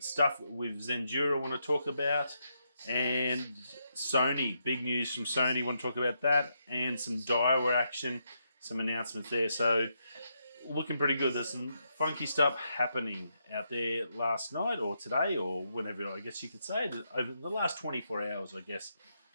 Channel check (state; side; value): inverted; both; correlation -0.81